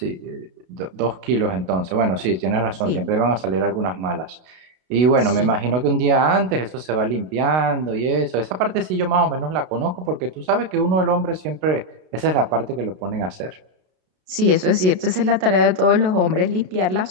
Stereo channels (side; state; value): left; late; 32 ms